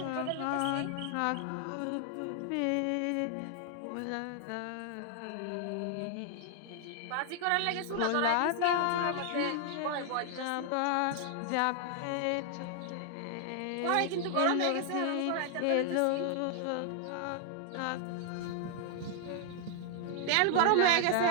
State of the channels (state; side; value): different; both; correlation 0.00